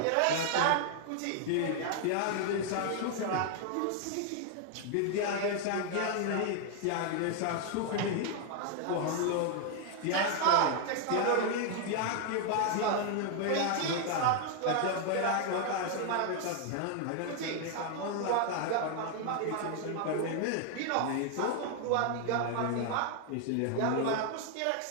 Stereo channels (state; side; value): different; both; correlation 0.00